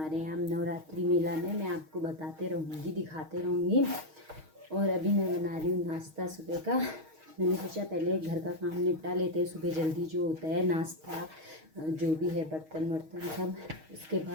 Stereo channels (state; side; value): late; left; 6.4 ms